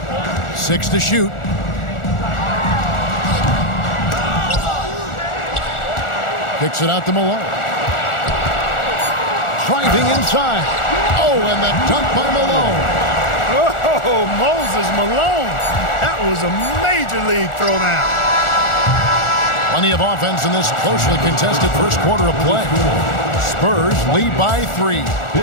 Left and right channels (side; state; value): right; late; 1.4 ms